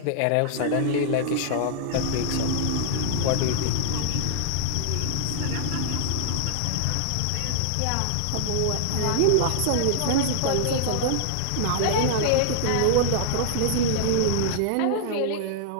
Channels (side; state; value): both; different; correlation -0.01